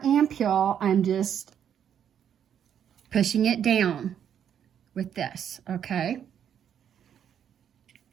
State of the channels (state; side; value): quieter; left; 8.9 dB